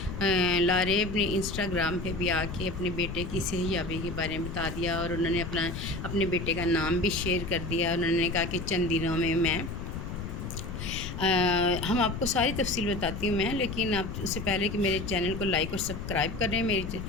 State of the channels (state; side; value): noise; left; rumble, 6 dB below the sound